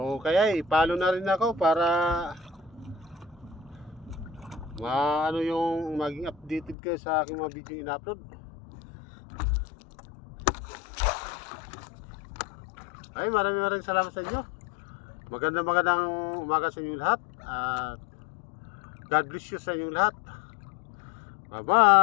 kaya i-follow na rin ako para ano yung maging updated kayo sa aking mga video in-upload. Ay, maraming salamat sa inyo. Magandang umaga sa inyo lahat. At God bless you sa inyo lahat. Bye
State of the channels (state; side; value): drops out; right; at 6.8 s